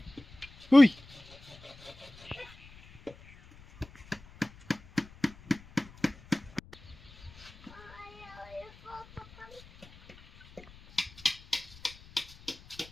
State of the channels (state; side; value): noise; left; rumble, 21 dB below the sound